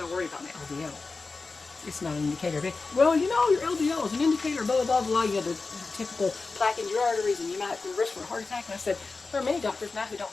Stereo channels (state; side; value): quieter; right; 4.0 dB